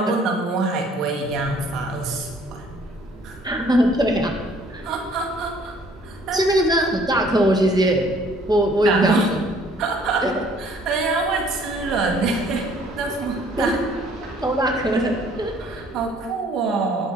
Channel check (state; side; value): normal; both; correlation 0.58